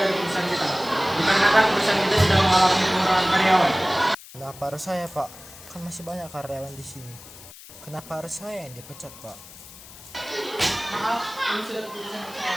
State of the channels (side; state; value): left; noise; hiss, 18 dB below the sound